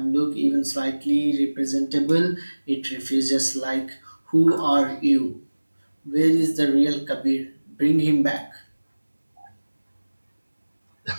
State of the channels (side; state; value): both; inverted; correlation -1.00